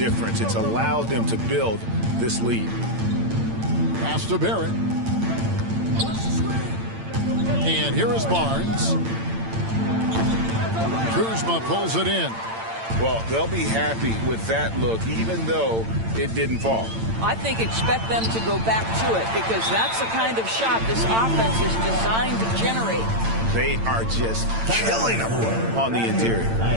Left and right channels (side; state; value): left; late; 8.9 ms